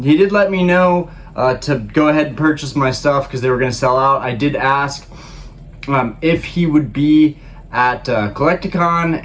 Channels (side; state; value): both; identical; correlation 1.00